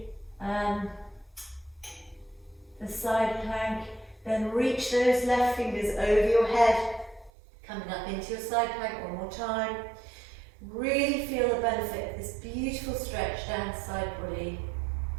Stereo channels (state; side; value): drops out; left; at 7.3 s